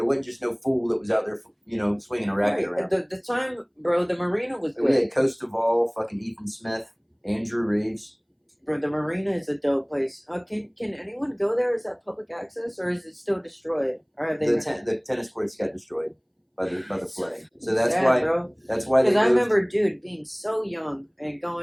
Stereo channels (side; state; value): both; identical; correlation 1.00